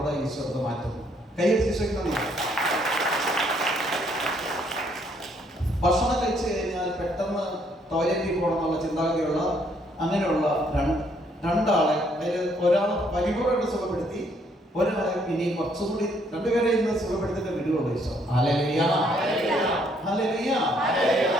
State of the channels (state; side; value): normal; both; correlation 0.68